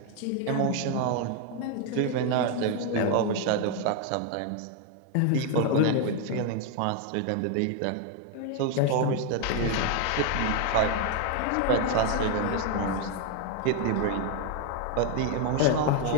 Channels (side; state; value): both; different; correlation 0.01